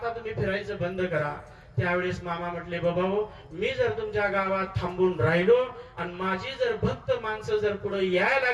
तुम्ही फिरायचं बंद करा. त्यावेळेस मामा म्हटले, बाबा मी जर तुमच्या गावात थांबून राहिलो आणि माझी जर भक्त माणसं जर पुढे यायला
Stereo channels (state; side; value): identical; both; correlation 1.00